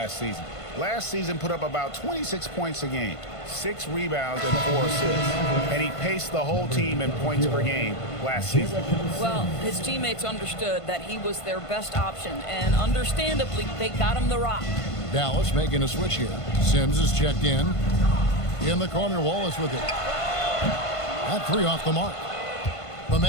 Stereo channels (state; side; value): late; right; 1.5 ms